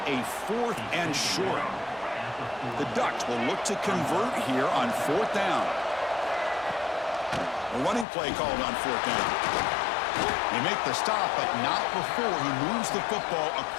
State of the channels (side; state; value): right; drops out; at 8.1 s